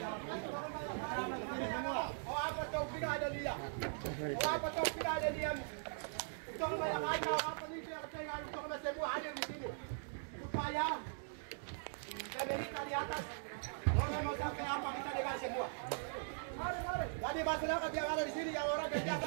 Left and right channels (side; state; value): left; silent; digital silence